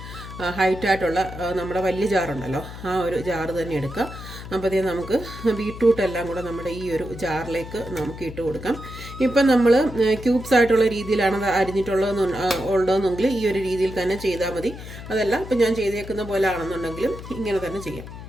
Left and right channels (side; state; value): left; noise; hum, 12 dB below the sound